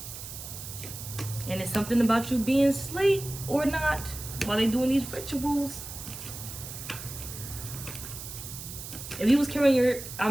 And it's something about you being asleep or not while they doing these rituals. If you was carrying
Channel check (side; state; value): right; noise; hiss, 10 dB below the sound